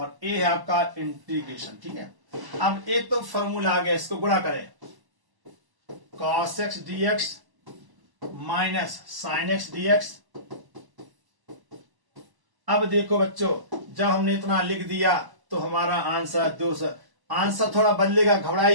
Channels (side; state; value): left; late; 1.1 ms